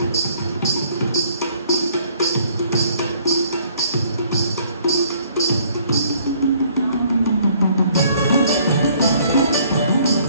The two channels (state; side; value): inverted; both; correlation -0.61